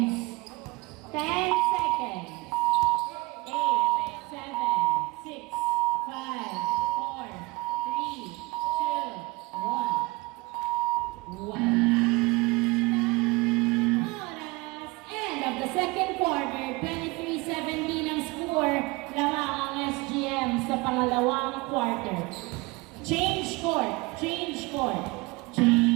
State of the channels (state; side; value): quieter; left; 24.4 dB